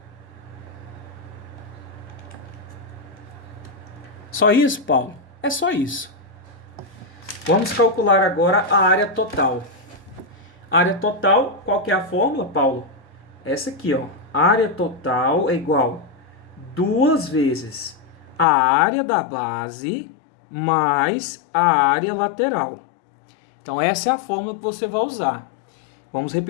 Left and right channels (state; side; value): drops out; right; at 18.4 s